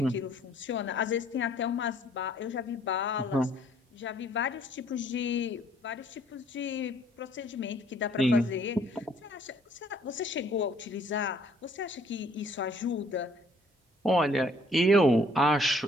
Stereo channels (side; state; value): both; normal; correlation 0.61